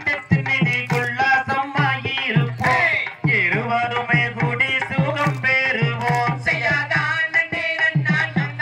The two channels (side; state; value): both; identical; correlation 1.00